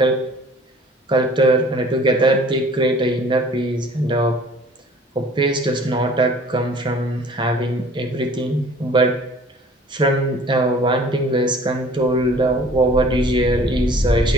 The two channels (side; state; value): both; normal; correlation 0.50